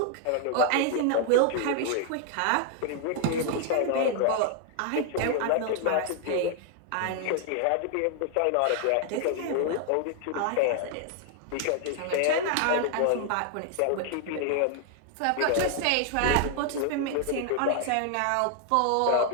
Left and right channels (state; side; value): different; both; correlation 0.00